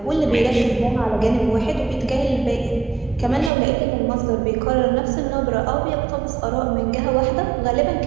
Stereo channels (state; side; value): drops out; left; at 3.5 s